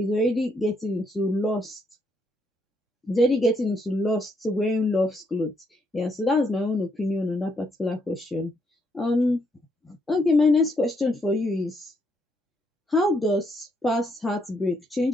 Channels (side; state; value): both; normal; correlation 0.75